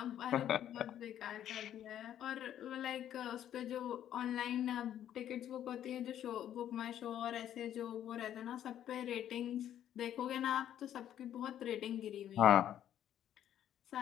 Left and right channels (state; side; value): quieter; right; 10.8 dB